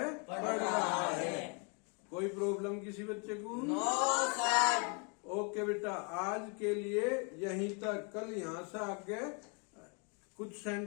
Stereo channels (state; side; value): quieter; right; 36.3 dB